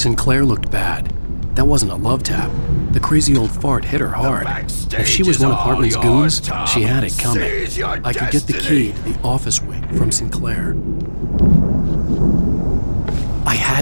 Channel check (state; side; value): inverted; both; correlation -1.00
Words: looked bad. That wasn't a love tap. The crazy old fart hit her hard. If she was one of Hartman's goons, she had it coming. I could get the key to the office wing from Sinclair. I